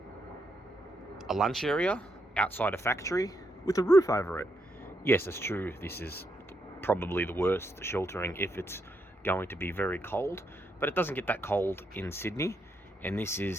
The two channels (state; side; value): normal; both; correlation 0.80